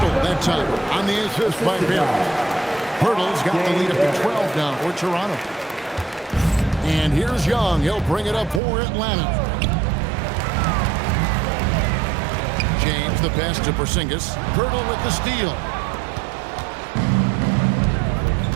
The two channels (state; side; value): drops out; left; at 8.6 s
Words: that time on the assist by Barry. Pirtle's got the lead up to 12 now for Toronto. And here's Young. He'll bring it up for Atlanta. James, the pass to Porzingis. Pirtle with the steal.